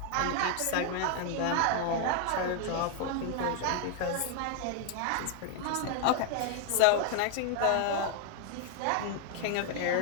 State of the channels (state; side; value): different; both; correlation 0.00